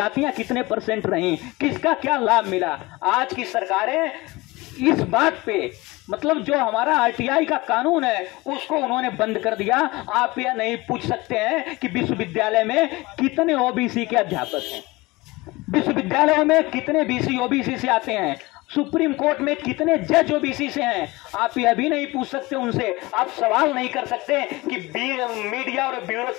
कितने % रहीं, किसका क्या लाभ मिला। आज की सरकारें इस बात पे, मतलब जो हमारा आरटीआई का कानून है उसको उन्होंने बंद कर दिया। आप यह नहीं पूछ सकते हैं कि विश्वविद्यालय में कितने ओबीसी के अध्यापक हैं, विश्वविद्यालयों में कितने बीसी ओबीसी से आते हैं। सुप्रीम कोर्ट में कितने जज ओबीसी से हैं, आप यह भी नहीं पूछ सकते उनसे, आप सवाल नहीं कर सकते कि मीडिया और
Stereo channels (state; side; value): quieter; right; 21.9 dB